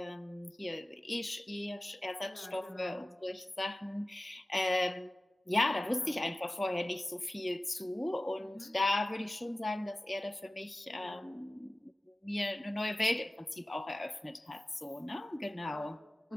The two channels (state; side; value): normal; both; correlation 0.97